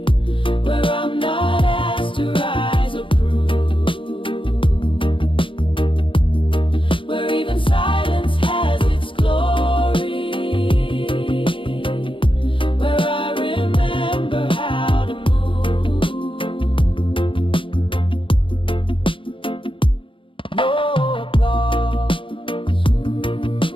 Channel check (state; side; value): late; right; 0.25 ms